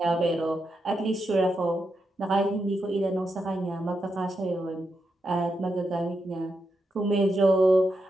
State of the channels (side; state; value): both; normal; correlation 0.85